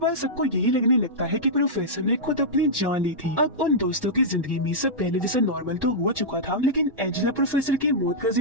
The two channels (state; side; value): normal; both; correlation -0.11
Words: सबको यही लगने लगता है कि प्रोफेसर ने खुद अपनी जान ली थी। अब उन दोस्तों की जिंदगी में सब पहले जैसा नॉर्मल तो हो चुका था, लेकिन एंजेला प्रोफेसर की मौत का